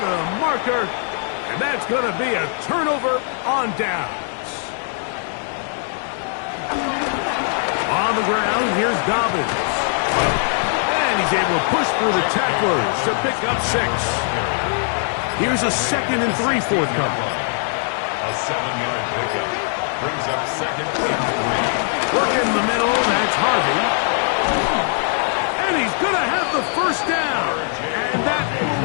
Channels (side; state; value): right; silent; 61 dB below the other